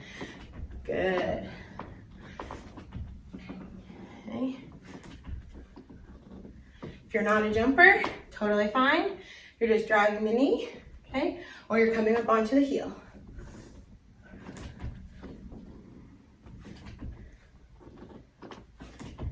Good. Okay. If you're not a jumper, totally fine. You're just driving the knee, okay? Or you're coming up onto the heel.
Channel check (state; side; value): identical; both; correlation 1.00